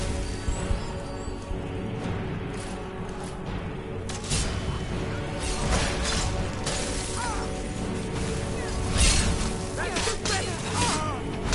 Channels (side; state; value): both; identical; correlation 1.00